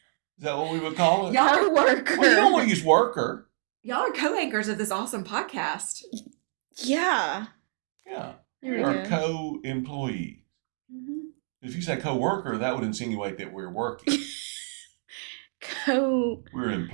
Is that what we would call it? co-worker. Well, you don't want to use worker. Y'all are co-anchors of this awesome podcast. Yeah. Yeah. There we We're go. a co-employee. If you say co-worker, that would insinuate that we're working. We're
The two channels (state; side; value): silent; left; 60 dB below the other